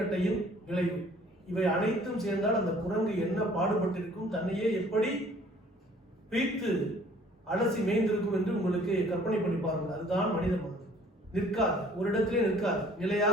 விளைவு, இவை அனைத்தும் சேர்ந்தால் அந்த குரங்கு என்ன பாடுபட்டிருக்கும், தன்னையே எப்படி பீத்து அலசி மேய்ந்திருக்கும் என்று உங்களுக்கு கற்பனை பண்ணி பாருங்கள். அதுதான் மனித மனம். நிற்காது, ஒரு இடத்திலே நிற்காது,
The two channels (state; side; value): normal; both; correlation 0.55